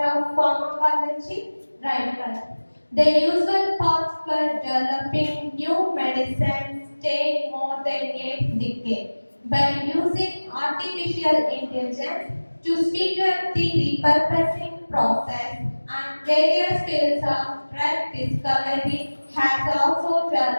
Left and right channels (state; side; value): inverted; both; correlation -1.00